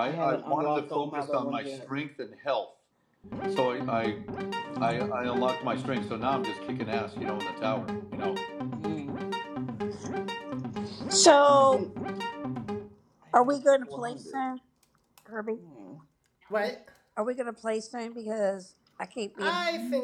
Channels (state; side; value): identical; both; correlation 1.00